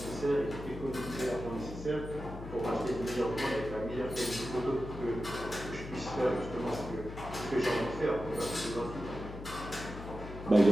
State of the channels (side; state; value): left; noise; hum, 11 dB below the sound